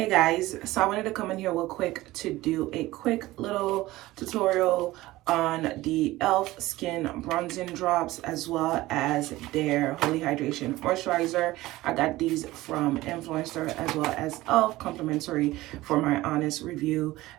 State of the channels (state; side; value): quieter; left; 17.9 dB